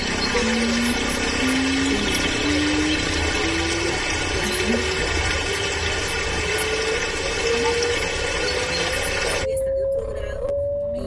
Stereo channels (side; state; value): both; identical; correlation 1.00